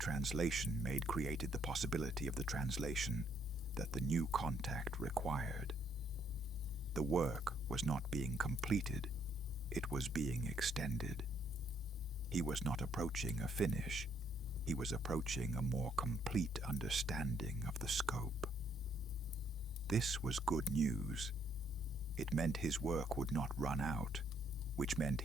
made created the possibility of the translation that the new contact required. The work was not being completed, it was being extended. He was not approaching a finish, he was approaching a more complete understanding of the scope. This was good news. It meant his work would not run out, which meant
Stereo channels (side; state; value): both; normal; correlation 0.69